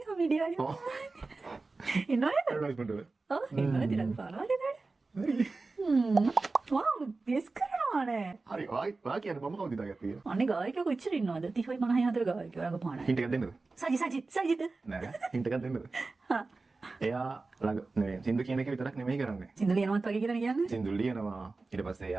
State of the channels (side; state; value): left; quieter; 3.7 dB